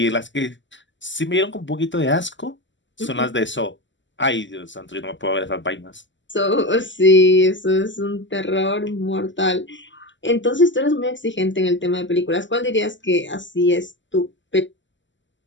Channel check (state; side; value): late; right; 0.54 ms